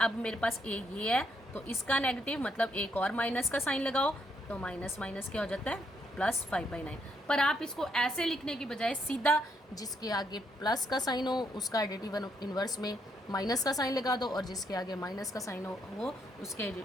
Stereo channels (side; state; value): both; normal; correlation 0.76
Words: मेरे पास ये है तो इसका नेगेटिव मतलब एक और माइनस का साइन लगाओ तो माइनस माइनस क्या हो जाता है, +5/9। पर आप इसको ऐसे लिखने की बजाय सीधा जिसके आगे प्लस का साइन हो उसका एडिटिव इनवर्स में माइनस का साइन लगा दो, और जिसके आगे माइनस का साइन हो वो उसके